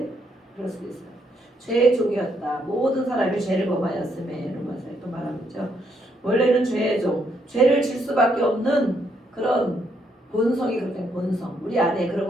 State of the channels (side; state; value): both; normal; correlation 0.74